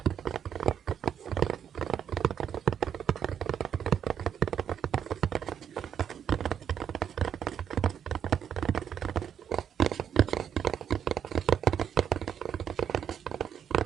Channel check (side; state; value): left; quieter; 8.6 dB